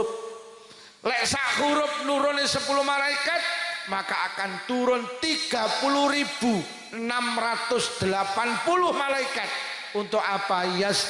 Lek sak huruf nurune 10 malaikat, maka akan turun 30.680 malaikat. Untuk apa?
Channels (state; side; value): identical; both; correlation 1.00